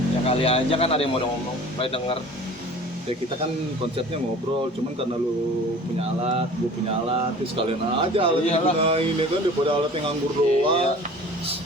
Ya kali aja kan ada yang mau ngomong, pengen denger. Ya kita kan konsepnya ngobrol, cuman karena lu punya alat, gue punya alat, terus kalian aja alat yang Iyalah. gunain ya kan daripada alat yang nganggur Iya. doang.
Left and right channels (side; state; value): both; normal; correlation 0.44